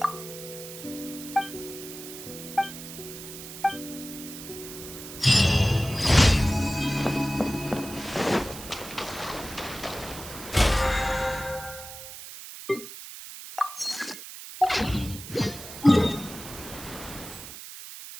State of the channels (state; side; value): noise; right; hiss, 12 dB below the sound